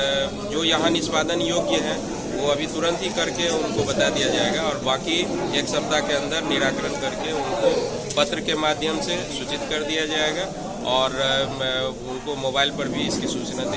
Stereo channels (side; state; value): both; identical; correlation 1.00